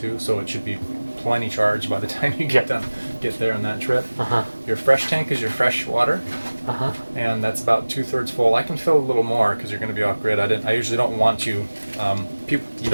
So it should be plenty charged by the time you get there on that trip. Your fresh tank is your fresh water, and that's about 2/3 full. I can fill a little more because you're going to be off grid. I usually don't want you. You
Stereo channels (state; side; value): inverted; both; correlation -1.00